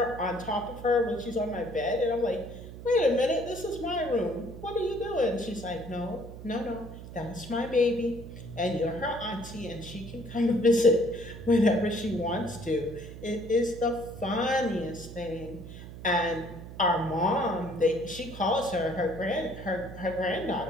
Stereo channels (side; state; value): right; noise; hum, 13 dB below the sound